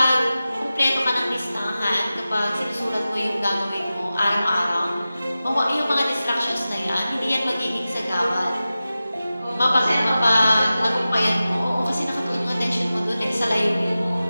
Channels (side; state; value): both; inverted; correlation -0.95